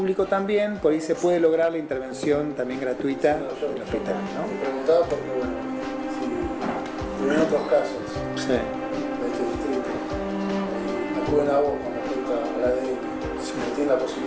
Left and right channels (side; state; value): both; identical; correlation 1.00